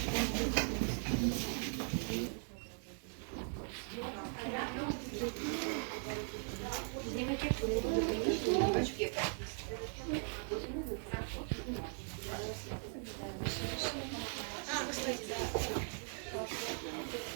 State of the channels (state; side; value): silent; left; 51 dB below the other